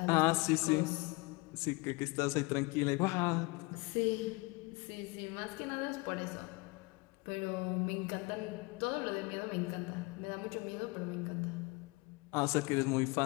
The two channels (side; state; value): right; quieter; 26.2 dB